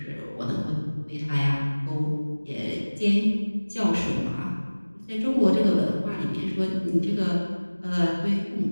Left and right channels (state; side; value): inverted; both; correlation -1.00